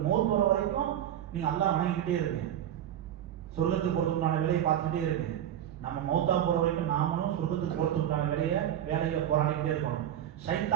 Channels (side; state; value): left; quieter; 11.0 dB